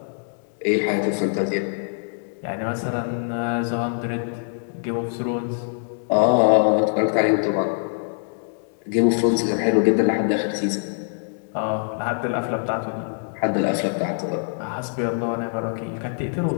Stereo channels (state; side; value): silent; right; digital silence